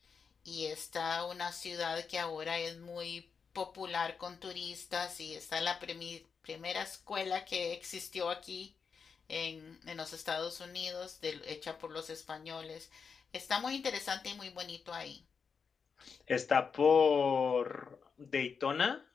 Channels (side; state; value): right; quieter; 5.8 dB